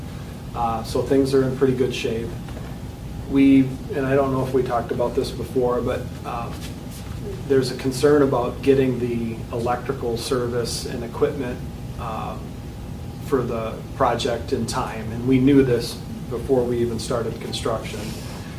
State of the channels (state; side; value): identical; both; correlation 1.00